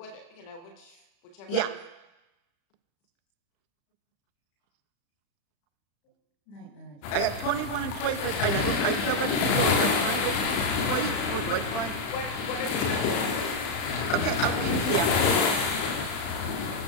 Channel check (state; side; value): late; right; 35 ms